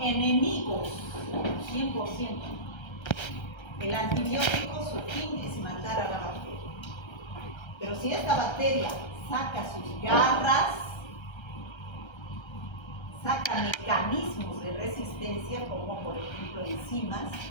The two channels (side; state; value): right; late; 1.3 ms